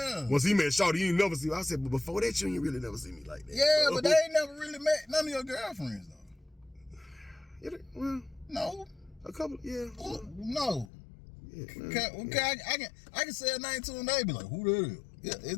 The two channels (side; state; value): right; drops out; at 10.9 s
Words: he met Shawty, you ain't never see me. I said, but before that, you ain't really never see me like that. Yeah, but they ain't never really met none of your girlfriends though. Well, no. A couple, yeah. No. Yeah, okay, I can say a name to them. They be like, who the hell? Yeah,